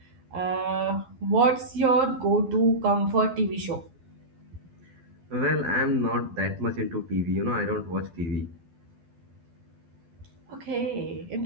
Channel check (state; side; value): late; left; 11 ms